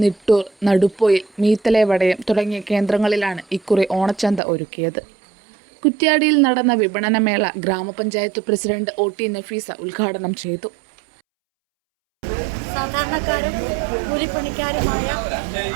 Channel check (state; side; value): drops out; left; at 4.4 s